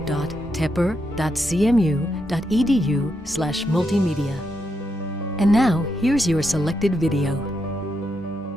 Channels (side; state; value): both; normal; correlation 0.83